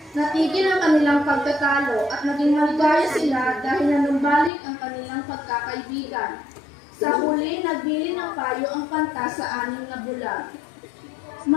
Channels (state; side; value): drops out; right; at 4.5 s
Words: Natigil ang kanilang pagtatalo at naging maligaya sila dahil nanumbalik ang kanilang pagkakaibigan. Sa huli, nagbili ng payo ang kanta sa anim na bulag.